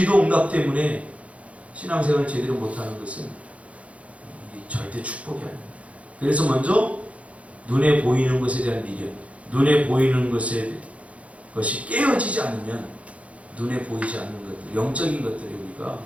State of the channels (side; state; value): left; late; 0.064 ms